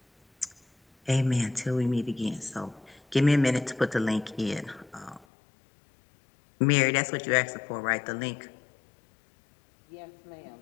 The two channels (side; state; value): right; drops out; at 5.2 s